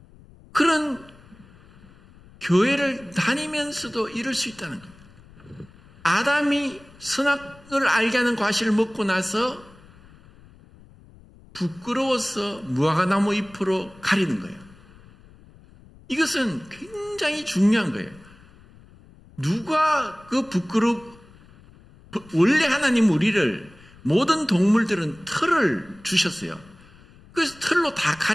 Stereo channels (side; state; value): left; noise; rumble, 24 dB below the sound